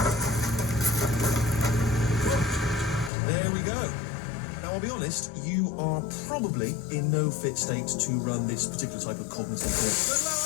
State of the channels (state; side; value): drops out; right; at 3.1 s